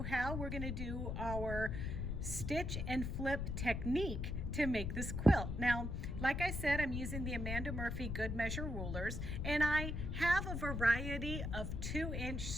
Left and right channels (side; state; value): left; noise; rumble, 2 dB below the sound